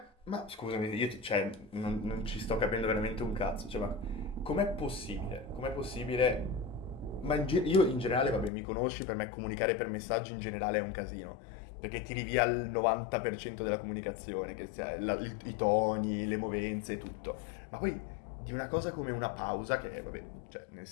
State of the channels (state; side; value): drops out; right; at 8.5 s